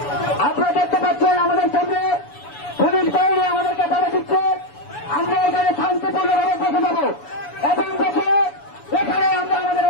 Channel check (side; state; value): right; late; 7.0 ms